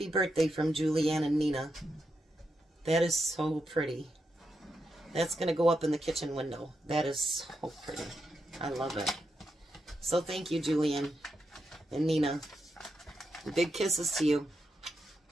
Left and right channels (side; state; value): both; normal; correlation 0.84